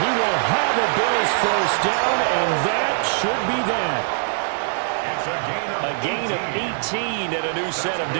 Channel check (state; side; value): silent; left; digital silence